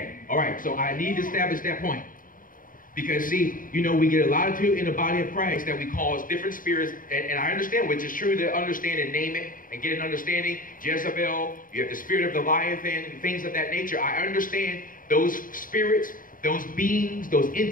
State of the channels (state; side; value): late; right; 0.40 ms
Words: all right, so I need to establish that point. Because see, you know, we get a lot of people in the body of Christ that we cause different spirits, and I understand, which is true to understand and name it and get an understanding. Jezebel, you have the spirit of the Leviathan, and things of that nature. I understand those spirits, those beings, those